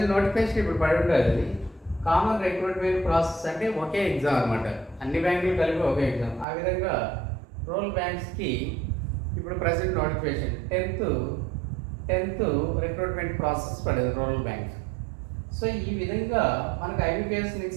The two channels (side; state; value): left; drops out; at 6.5 s